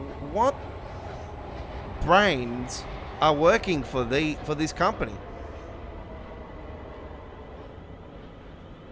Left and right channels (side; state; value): both; identical; correlation 1.00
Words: what brains are working for this company?